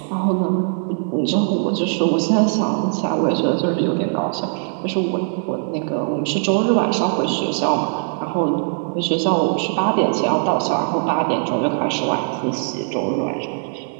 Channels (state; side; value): silent; left; 63 dB below the other